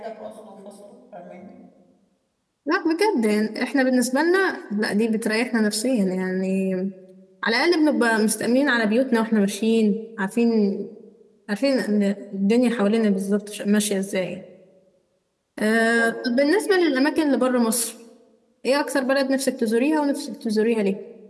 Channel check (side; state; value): both; identical; correlation 1.00